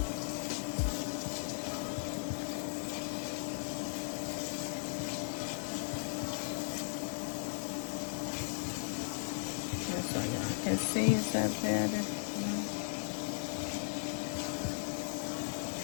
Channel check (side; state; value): right; silent; digital silence